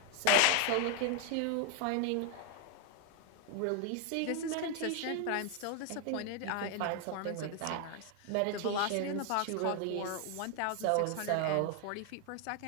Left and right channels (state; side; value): different; both; correlation 0.00